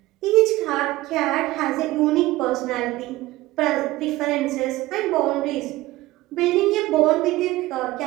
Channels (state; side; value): quieter; left; 18.0 dB